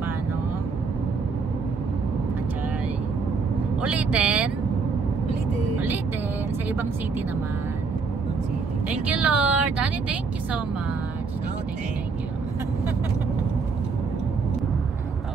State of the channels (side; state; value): left; quieter; 4.9 dB